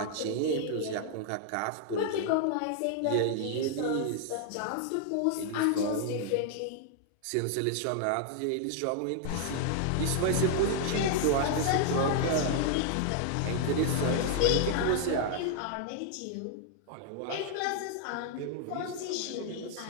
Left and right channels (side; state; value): both; different; correlation 0.00